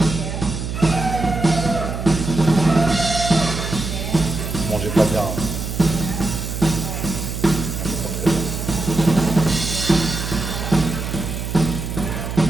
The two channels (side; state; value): right; noise; hum, 5 dB below the sound